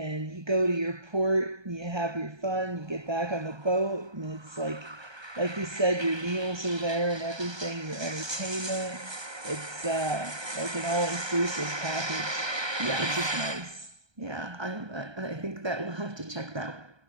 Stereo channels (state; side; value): late; left; 1.3 ms